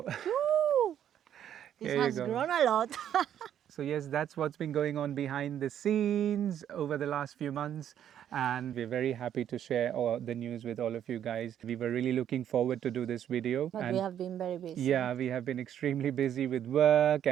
Woo! This here you has go. grown a lot. So yes, that's what's been going on behind the scenes over the last few months, and we're very happy to share all the news with all of you guys. We were really looking forward to do this video, But and we have been very busy. yeah, we have been extremely busy with work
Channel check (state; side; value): quieter; left; 10.0 dB